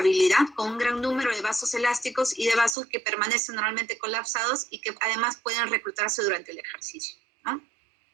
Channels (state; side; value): drops out; left; at 2.8 s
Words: con un gran número de vasos elásticos y de vasos que permanecen normalmente colapsados y que además pueden reclutarse durante el ejercicio, ¿no?